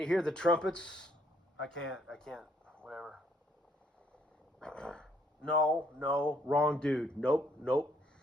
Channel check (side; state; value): both; normal; correlation 0.68